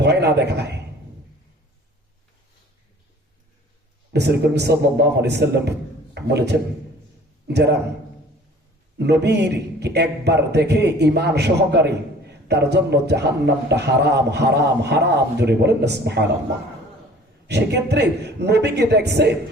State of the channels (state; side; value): normal; both; correlation 0.49